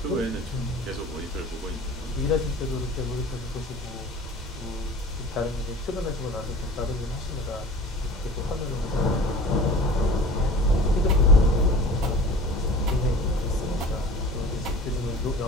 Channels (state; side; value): normal; both; correlation 0.41